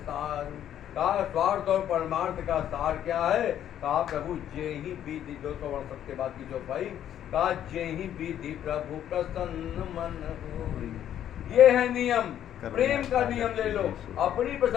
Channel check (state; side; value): quieter; right; 10.7 dB